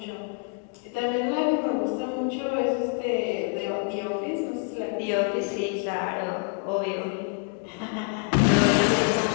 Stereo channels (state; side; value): quieter; right; 37.5 dB